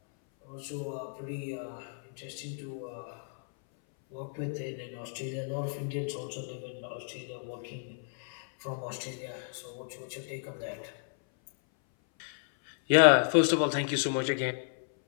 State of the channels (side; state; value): right; silent; 56 dB below the other